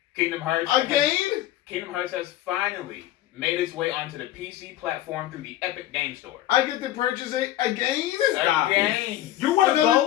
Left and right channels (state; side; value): quieter; right; 14.0 dB